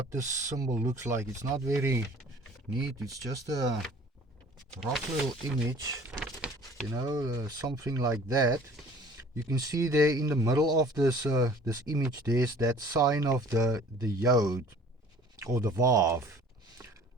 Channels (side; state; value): both; normal; correlation 0.49